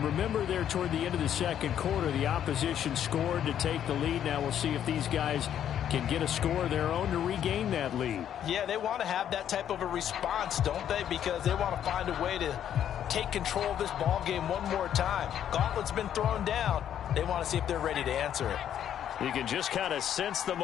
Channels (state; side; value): quieter; right; 10.0 dB